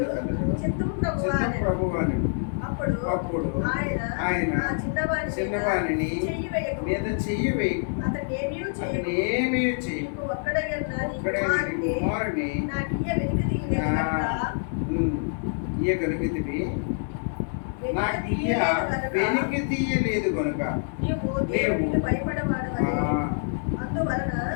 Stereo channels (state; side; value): silent; right; 61 dB below the other